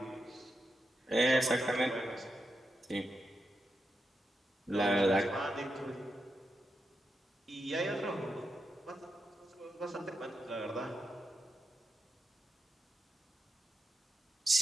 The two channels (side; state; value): both; normal; correlation 0.86